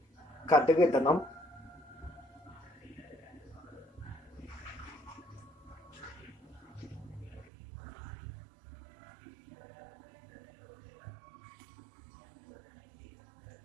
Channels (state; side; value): drops out; left; at 7.5 s